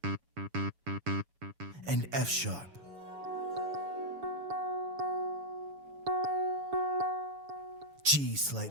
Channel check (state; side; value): late; left; 7.1 ms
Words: And F sharp. G